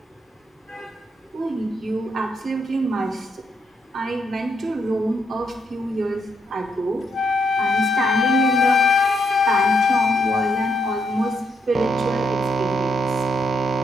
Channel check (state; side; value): normal; both; correlation 0.77